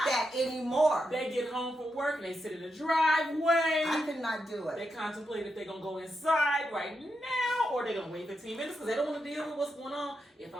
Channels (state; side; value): normal; both; correlation 0.85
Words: that anymore. They get home from work and they sit in the driveway. I could not do it. They contemplate if they're going to go inside right now or they're going to wait 15 minutes because they don't want to deal with what's going on. If